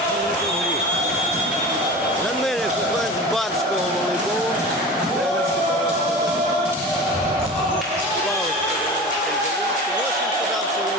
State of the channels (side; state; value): both; normal; correlation 0.34